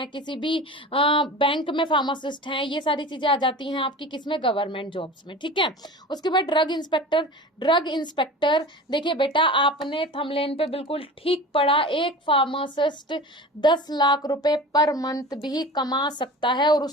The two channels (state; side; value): normal; both; correlation 0.35